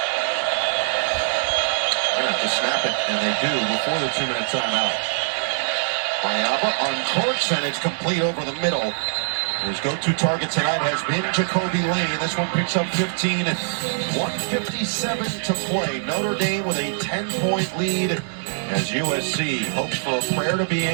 They have to snap it, and they do before the 2-minute timeout. Mayava uncorks, and it's complete over the middle. His go-to target tonight has been Jacoby Lane. This one picks up 15 and 1:57 to play. Notre Dame with a 10-point lead as USC hopes for a prayer to be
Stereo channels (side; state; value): left; silent; digital silence